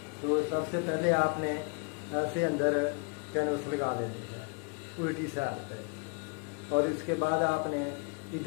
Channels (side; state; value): right; quieter; 34.3 dB